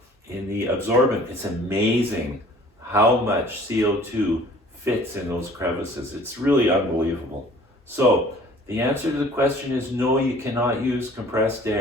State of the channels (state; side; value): normal; both; correlation 0.51